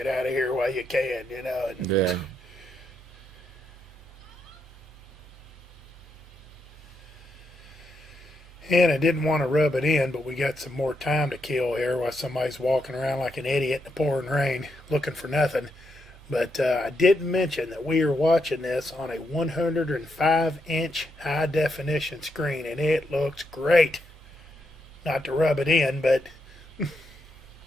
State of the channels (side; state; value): both; normal; correlation 0.80